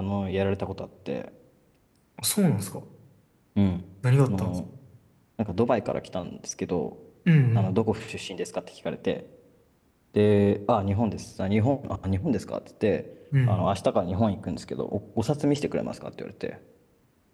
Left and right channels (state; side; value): identical; both; correlation 1.00